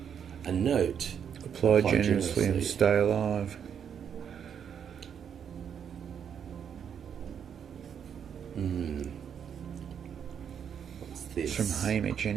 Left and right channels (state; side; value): quieter; left; 8.0 dB